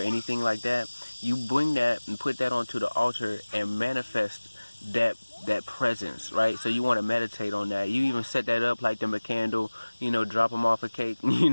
like that, you bring that and put that onto the altar and manifest that presence, right? So you want to meditate on that. You even set that up, light them a candle, you know, drop them off a cake, you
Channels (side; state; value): both; inverted; correlation -1.00